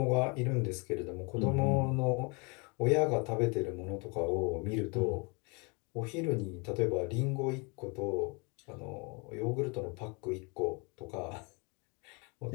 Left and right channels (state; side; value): quieter; right; 31.1 dB